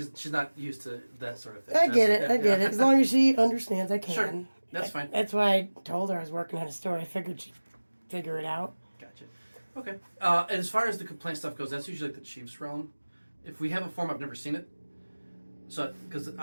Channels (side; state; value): both; inverted; correlation -1.00